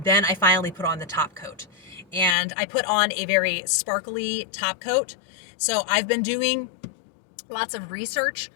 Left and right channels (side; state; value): right; drops out; at 2.4 s